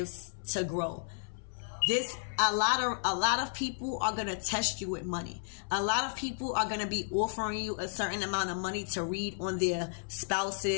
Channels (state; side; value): silent; right; 56 dB below the other